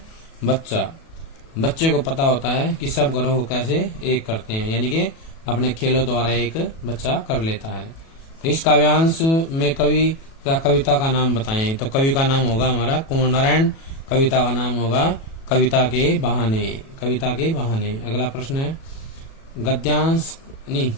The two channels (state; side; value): late; right; 37 ms